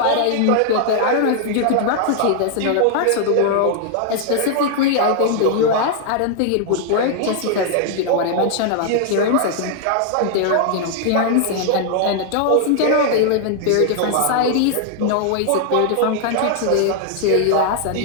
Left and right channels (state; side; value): different; both; correlation 0.00